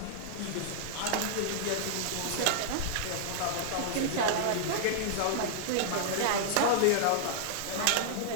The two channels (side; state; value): both; different; correlation -0.01